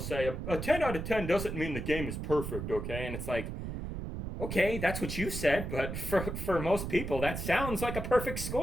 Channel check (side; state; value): right; noise; rumble, 5 dB below the sound